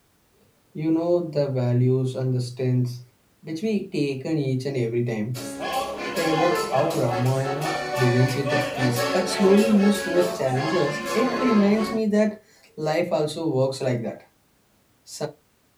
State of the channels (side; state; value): both; identical; correlation 1.00